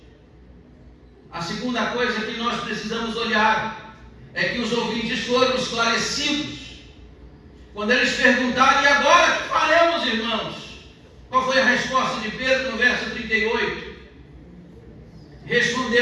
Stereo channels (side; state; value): both; identical; correlation 1.00